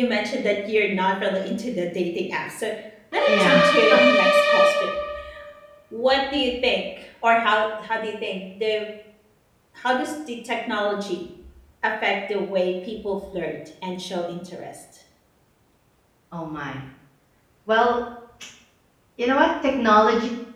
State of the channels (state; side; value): identical; both; correlation 1.00